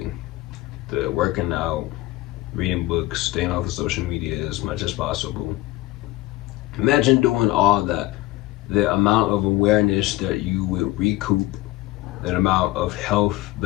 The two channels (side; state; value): right; quieter; 17.8 dB